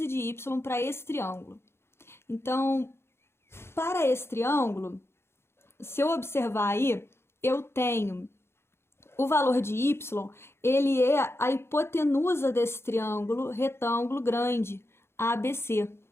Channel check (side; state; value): right; late; 0.12 ms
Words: de y para esse triângulo? Então, para esse triângulo, se eu observar aí, eu tenho o valor de y, ele é a hipotenusa desse triângulo retângulo grande, ABC.